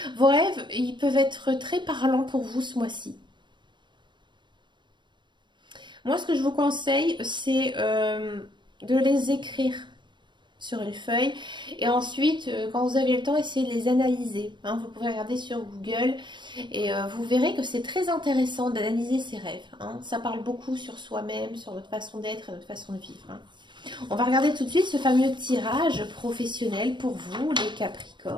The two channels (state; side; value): late; left; 0.22 ms